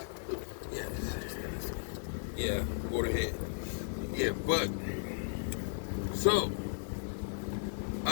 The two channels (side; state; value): right; silent; digital silence